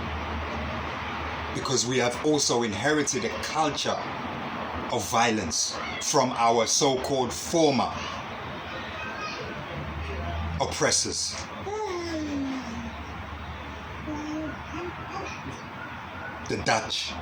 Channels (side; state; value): both; identical; correlation 1.00